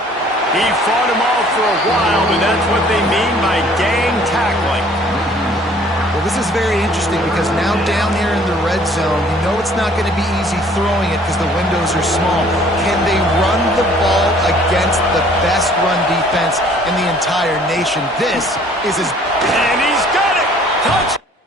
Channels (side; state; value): both; normal; correlation 0.56